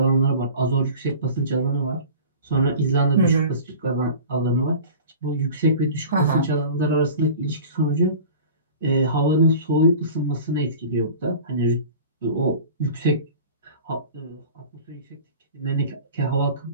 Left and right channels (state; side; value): inverted; both; correlation -0.39